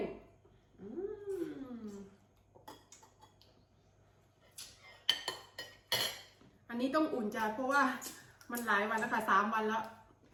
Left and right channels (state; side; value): identical; both; correlation 1.00